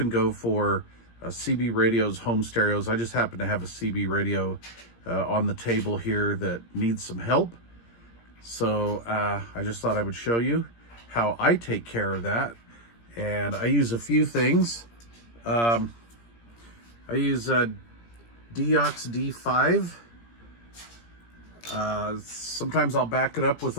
go for CB radios, home stereos. I just happen to have a CB radio on the table here that needs some help. So I just thought I would show you how I take care of that. And I use a few things. I use Deox D5. Sometimes I'll back it up with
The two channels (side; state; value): right; late; 17 ms